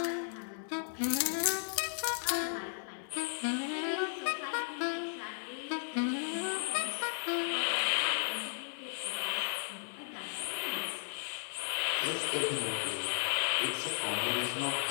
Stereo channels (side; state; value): right; silent; digital silence